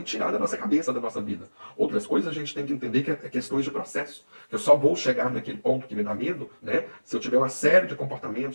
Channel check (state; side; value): inverted; both; correlation -1.00